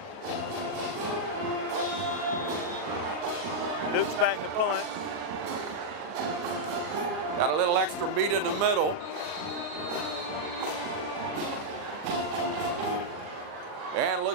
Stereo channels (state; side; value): late; left; 40 ms